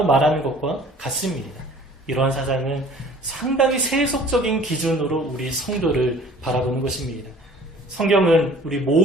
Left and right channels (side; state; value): both; normal; correlation 0.50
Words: 말하는 것과 같습니다. 이러한 사상은 상당히 세속적인 기준으로 우리 성도를 바라보는 것입니다. 성경은 우리